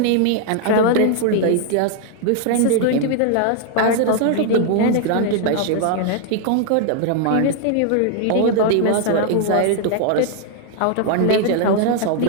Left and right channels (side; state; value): both; different; correlation 0.00